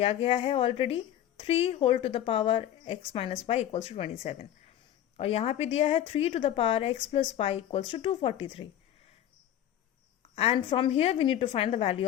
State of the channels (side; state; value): right; quieter; 11.5 dB